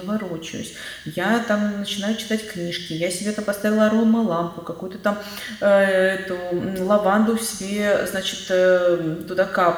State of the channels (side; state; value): both; identical; correlation 1.00